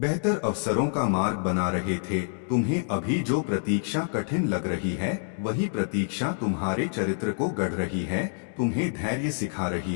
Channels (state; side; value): silent; right; digital silence